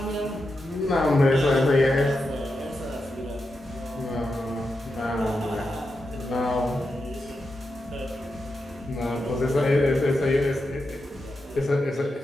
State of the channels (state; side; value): normal; both; correlation 0.87